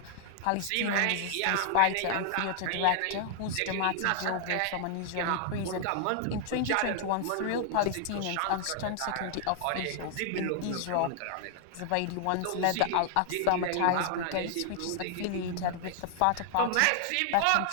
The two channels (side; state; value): both; different; correlation 0.00